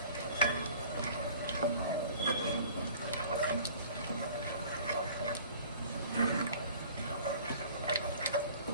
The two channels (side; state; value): both; inverted; correlation -0.48